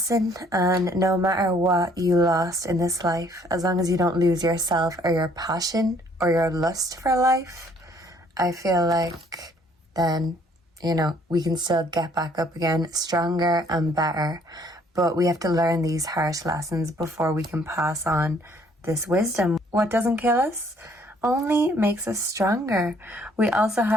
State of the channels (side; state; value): both; normal; correlation 0.62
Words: and no matter what you lost in this life, as long as you don't lose yourself or your passion or your lust for life, I feel like then, we can still get back up again, stronger and better. But we have to learn these harsh lessons before we can pass on this wisdom. What doesn't kill us only makes us stronger. We also